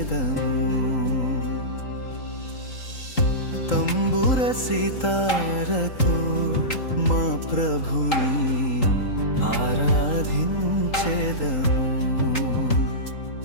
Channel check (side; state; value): right; late; 3.8 ms